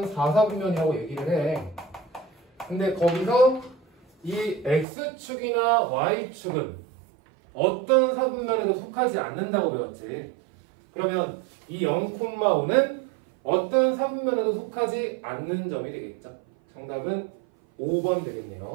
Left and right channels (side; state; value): left; drops out; at 4.9 s